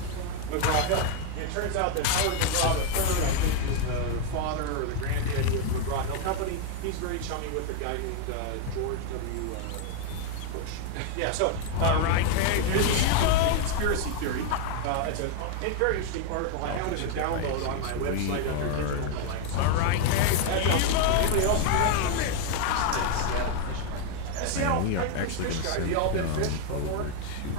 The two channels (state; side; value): different; both; correlation 0.01